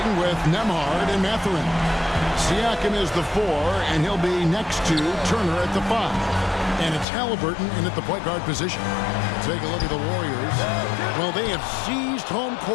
with Nembhard and Mathurin. Siakam is the 4, and he'll be next to Turner at the 5. And it's Halliburton in at the point guard position. Take a look at the Warriors. Well, they have seized home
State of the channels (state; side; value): drops out; right; at 7.1 s